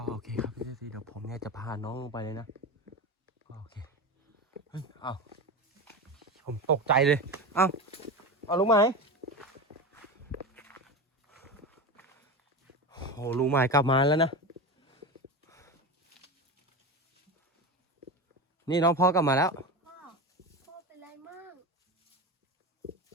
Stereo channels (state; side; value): normal; both; correlation 0.23